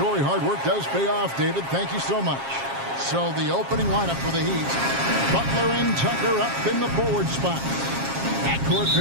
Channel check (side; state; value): left; late; 7.4 ms